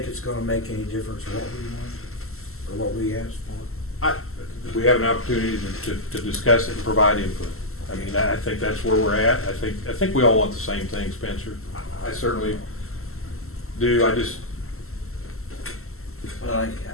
it's gonna make any difference what we want, or what we asked for? We have an opportunity to discuss it and provide input. I mean, I think that's where we're at. I think we all want the same thing, Spencer. I certainly do. Well,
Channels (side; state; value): right; late; 0.62 ms